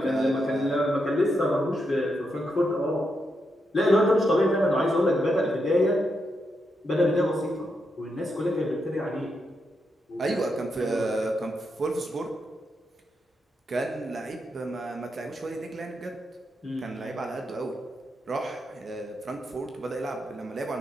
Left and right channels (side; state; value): both; normal; correlation 0.83